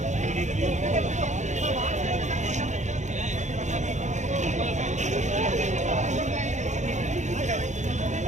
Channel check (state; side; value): late; left; 0.34 ms